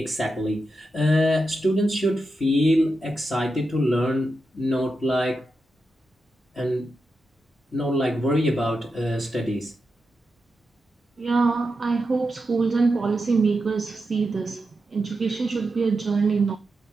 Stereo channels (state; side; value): normal; both; correlation 0.88